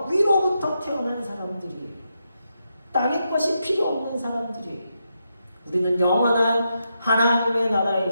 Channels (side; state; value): both; inverted; correlation -0.84